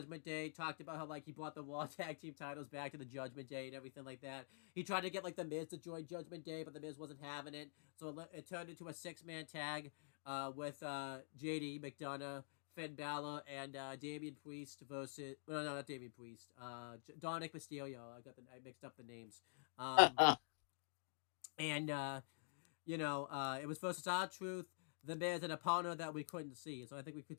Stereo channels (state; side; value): silent; right; digital silence